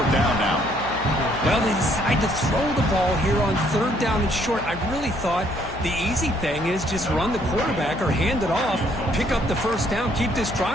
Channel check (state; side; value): noise; left; hum, 12 dB below the sound